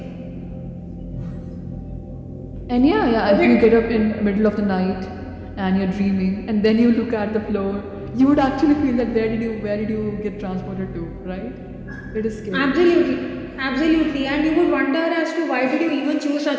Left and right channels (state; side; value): identical; both; correlation 1.00